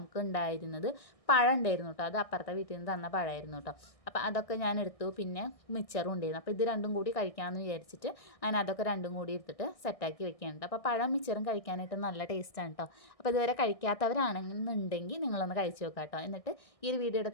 ഉണ്ടായിരുന്നത് പഴം ഉണ്ടായിരുന്നു കേട്ടോ. അത് അപ്പുറത്തെ വീട്ടിൽ നിന്ന് തന്ന പഴമായിരുന്നു കേട്ടോ. അപ്പോൾ അതൊക്കെ ഞാൻ എടുത്തു. പിന്നെ മിച്ചറും ഉണ്ടായിരുന്നു. അപ്പോൾ ഇത് രണ്ടും കൂടി കഴിക്കാമെന്ന് വിചാരിച്ചിട്ട് അങ്ങനെ അതൊക്കെ രണ്ടും കൂടി എടുത്തിട്ട് സെറ്റാക്കി വെക്കാനുണ്ട്. അപ്പോൾ പഴം മിച്ചറും കഴിക്കാനായിട്ട് നല്ല ടേസ്റ്റാണ് കേട്ടോ. അപ്പോൾ ഇതുവരെ കഴിക്കാത്തവരാണെന്നുണ്ടെങ്കിൽ നിങ്ങളൊന്ന് കഴിച്ച് നോക്കാം കേട്ടോ. എന്നിട്ട് ഈ ഒരു വീഡിയോയുടെ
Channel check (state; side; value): late; right; 1.6 ms